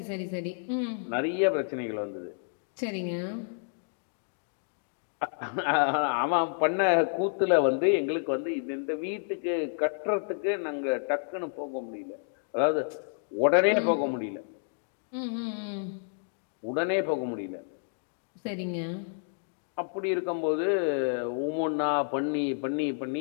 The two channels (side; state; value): right; silent; digital silence